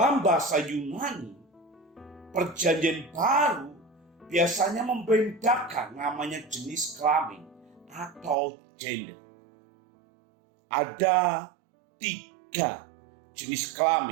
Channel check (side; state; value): left; drops out; at 8.3 s